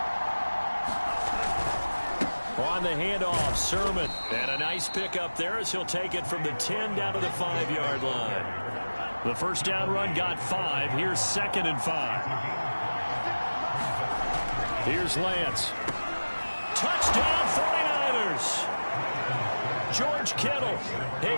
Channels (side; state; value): both; inverted; correlation -1.00